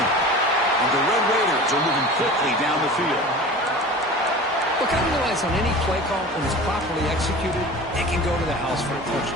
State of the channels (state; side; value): normal; both; correlation 0.37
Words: And the Red Raiders are moving quickly down the field. Look, I realize on any play call, when it's properly executed, it can go to the house for a